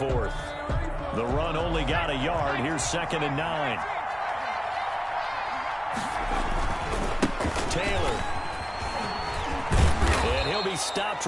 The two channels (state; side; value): identical; both; correlation 1.00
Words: The run only got a yard. Here's 2nd and 9. Taylor. And he'll be stopped